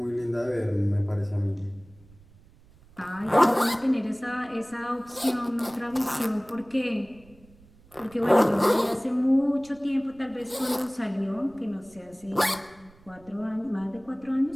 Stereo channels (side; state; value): right; noise; rumble, 26 dB below the sound